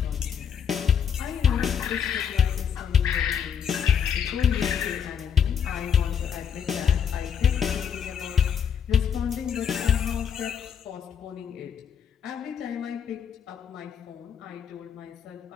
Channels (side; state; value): right; quieter; 7.8 dB